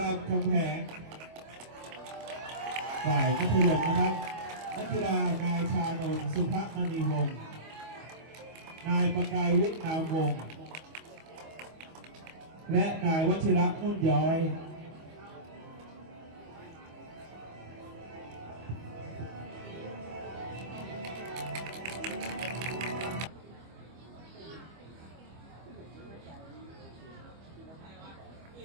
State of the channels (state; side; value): late; left; 25 ms